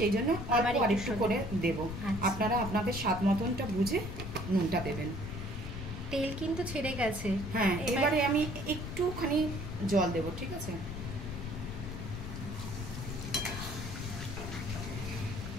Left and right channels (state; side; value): noise; left; rumble, 7 dB below the sound